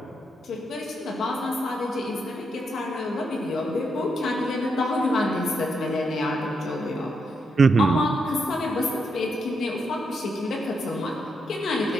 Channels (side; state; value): both; normal; correlation 0.81